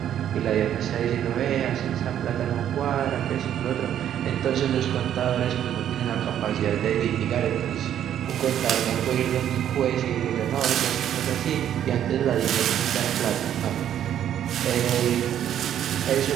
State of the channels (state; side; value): quieter; left; 10.4 dB